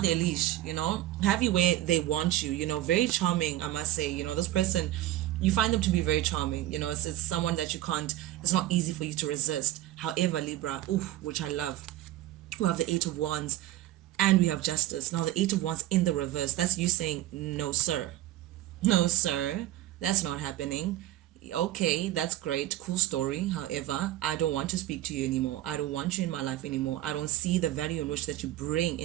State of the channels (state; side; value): quieter; left; 14.3 dB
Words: their leash, you know, have you where they want you, you know, very charming, I must say, you know, this person, you find them to be very charming, you know, it's someone that you can't, it's not easy for you to resist. However, Libra, ooh, which I love, we have the Eight of Wands, and we have Justice. Now the Eight of Wands in the reverse, that's you saying, no sir, no, sir, that's not happening. Okay, that's great, cool story. However, I don't want to speak to you anymore. I don't want you in my life anymore. I don't see the value in which that you bring